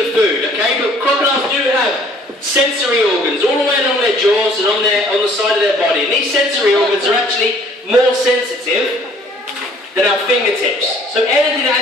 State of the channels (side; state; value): both; normal; correlation 0.57